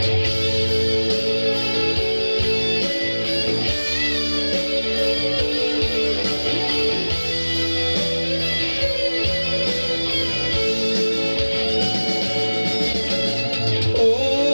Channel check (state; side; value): inverted; both; correlation -1.00